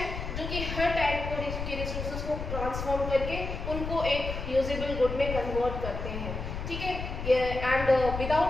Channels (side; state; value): left; noise; rumble, 5 dB below the sound